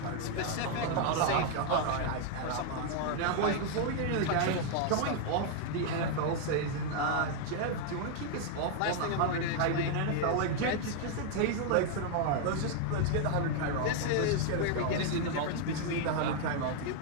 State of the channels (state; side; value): different; both; correlation 0.00